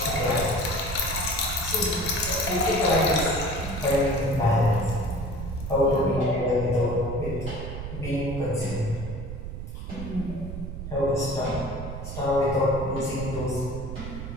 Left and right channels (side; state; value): right; noise; rumble, 7 dB below the sound